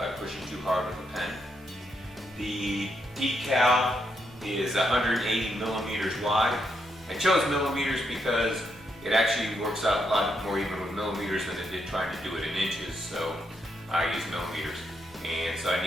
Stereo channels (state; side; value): normal; both; correlation 0.79